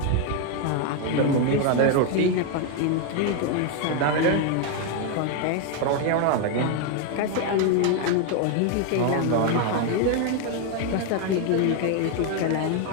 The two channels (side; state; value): both; different; correlation 0.01